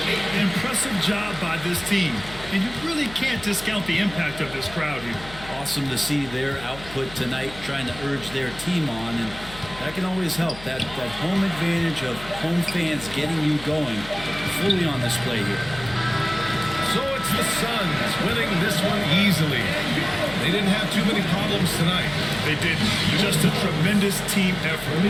Impressive job by this team. And you really can't discount the impact of this crowd here. Awesome to see their output tonight, trying to urge their team on, and that can always help. That home advantage of home fans getting you going fully on display here. So it's the Suns winning this one easily. They didn't have too many problems tonight. They didn't. Just a tremendous team effort.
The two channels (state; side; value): noise; left; hum, 16 dB below the sound